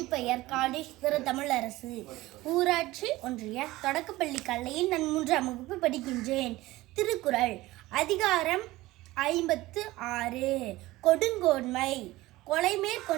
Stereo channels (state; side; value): quieter; left; 18.3 dB